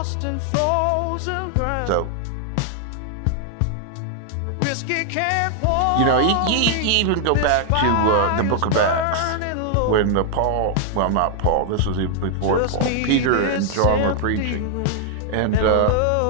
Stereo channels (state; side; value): different; both; correlation 0.00